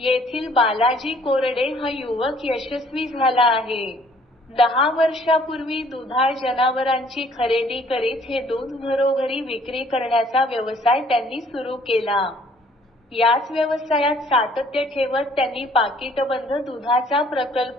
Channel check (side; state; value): both; normal; correlation 0.59